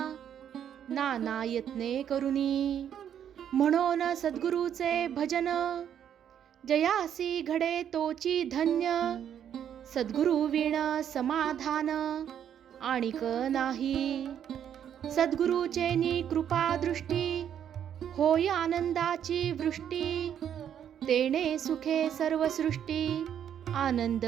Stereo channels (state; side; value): quieter; left; 9.3 dB